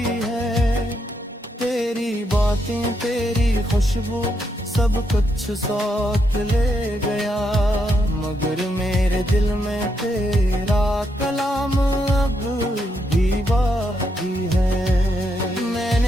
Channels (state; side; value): normal; both; correlation 0.79